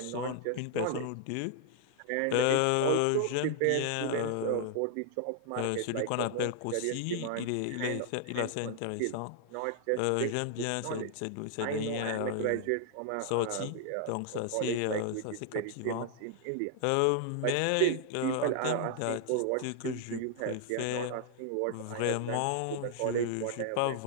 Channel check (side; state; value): both; different; correlation 0.00